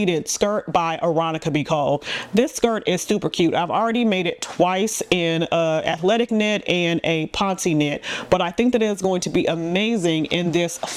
skirt by McCalls. This skirt is super cute. I've already made it twice in athletic knit and a ponte knit, but I think that it's going to be amazing in this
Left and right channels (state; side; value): identical; both; correlation 1.00